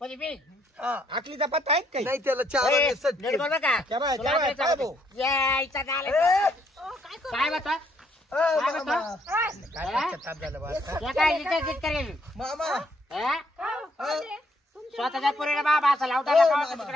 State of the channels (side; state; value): both; normal; correlation 0.70